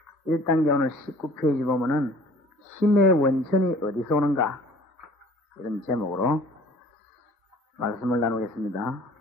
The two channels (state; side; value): normal; both; correlation 0.50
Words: 1단계 오늘 19페이지 보면은 힘의 원천이 어디서 오는가, 이런 제목으로 말씀을 나누겠습니다.